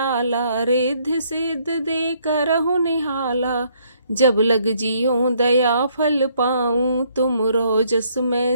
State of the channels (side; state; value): both; inverted; correlation -0.67